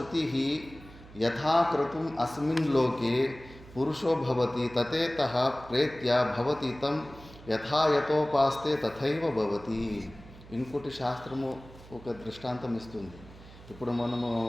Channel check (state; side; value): noise; right; hum, 19 dB below the sound